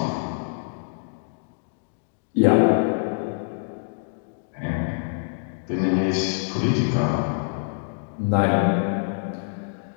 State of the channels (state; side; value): silent; right; 62 dB below the other